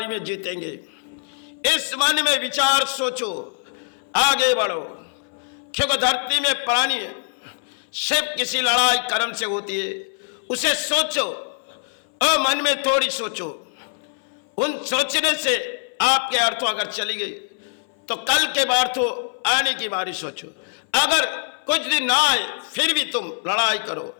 में जीतेंगे। इस मन में विचार सोचो, आगे बढ़ो, क्योंकि धरती में प्राणी है, सिर्फ किसी लड़ाई कर्म से होती है। उसे सोचो और मन में थोड़ी सोचो। उन सोचने से आपके अर्थों अगर चली गई तो कल के अर्थों आने की बारी सोचो। अगर कुछ दिन ना आए फिर भी तुम लड़ाई करो,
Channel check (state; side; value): silent; right; 59 dB below the other